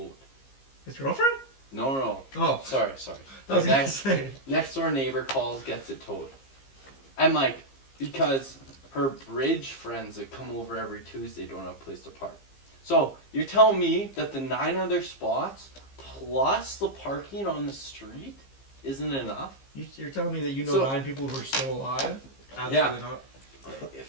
His girlfriend? No. Oh. Sorry. I was gonna say. Next door neighbor calls, gets it towed. And like, because her bridge friends that come over every Tuesday don't have a place to park. So you're telling me that the 9 other spots plus the parking on the street isn't enough? You're telling me that you know 9 people who are still alive? Absolutely not.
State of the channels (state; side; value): late; right; 15 ms